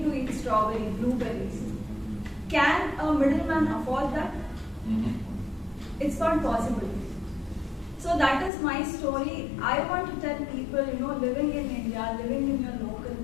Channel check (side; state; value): right; drops out; at 8.5 s